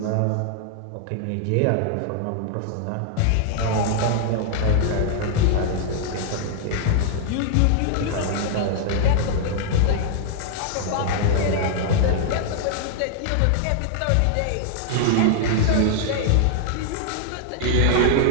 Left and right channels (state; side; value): different; both; correlation -0.01